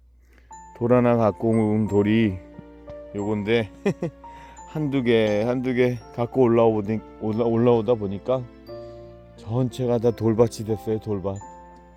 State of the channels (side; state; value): both; identical; correlation 1.00